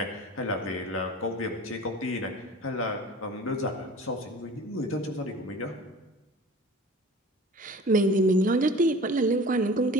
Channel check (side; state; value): both; normal; correlation 0.41